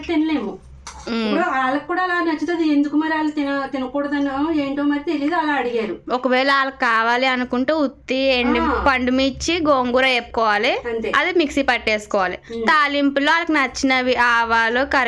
తినలేము. ఇప్పుడు వాళ్ళకి కూడా అలా నచ్చుతుంది. ఎందుకు మరి వాళ్ళు తినకూడదనో ఏంటో మరి తెలియదు, అలా అడిగారు. ఒకవేళ వాళ్ళకి కావాలి అనుకుంటే ఉత్తి పండుమిర్చి, గోంగూర వేపుకోవాలి, అది మిక్సీ పట్టేసుకోవాలి. తాలింపులో వాళ్ళకి నచ్చినవి ఆవాలు,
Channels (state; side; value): identical; both; correlation 1.00